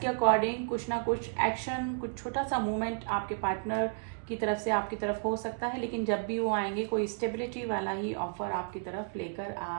अकॉर्डिंग कुछ ना कुछ एक्शन, कुछ छोटा सा मूवमेंट आपके पार्टनर की तरफ से आपकी तरफ हो सकता है, लेकिन जब भी वो आएंगे कोई स्टेबिलिटी वाला ही ऑफर आपकी तरफ लेकर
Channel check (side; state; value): left; silent; digital silence